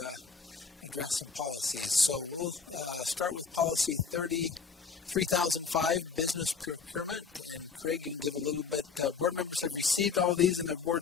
address some policies. So we'll start with policy 3005, business procurement. And Craig, you can give a little bit, board members have received all of these in their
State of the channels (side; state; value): right; quieter; 5.5 dB